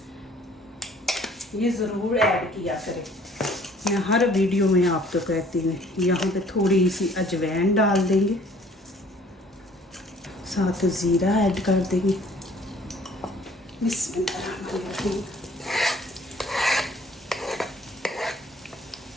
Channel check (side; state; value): both; normal; correlation 0.56